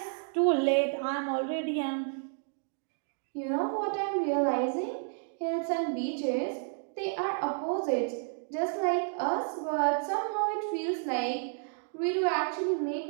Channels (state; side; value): silent; left; digital silence